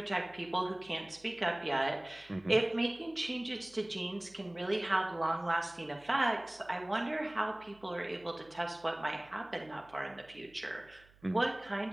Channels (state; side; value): noise; right; hum, 27 dB below the sound